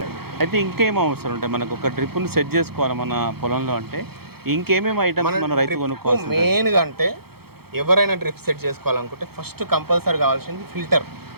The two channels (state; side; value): late; left; 0.96 ms